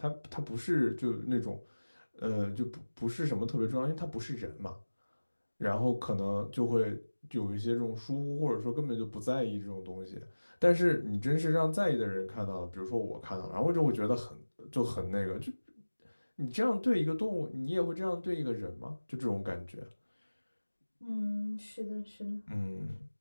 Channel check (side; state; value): both; inverted; correlation -1.00